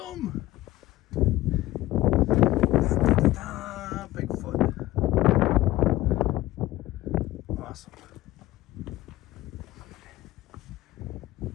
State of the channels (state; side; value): quieter; right; 16.7 dB